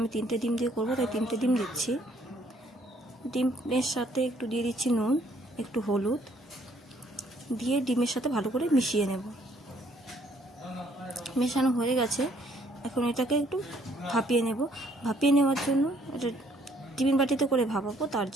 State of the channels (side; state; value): both; normal; correlation 0.65